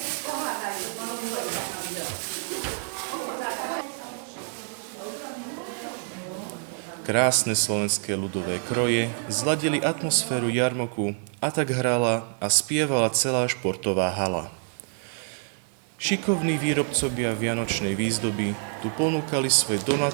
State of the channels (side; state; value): left; silent; 56 dB below the other